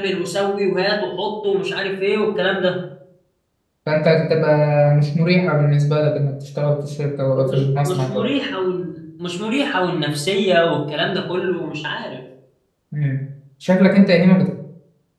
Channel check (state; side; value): identical; both; correlation 1.00